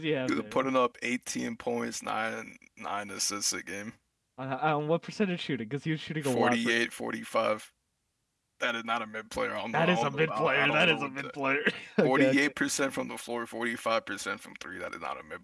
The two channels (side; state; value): both; identical; correlation 1.00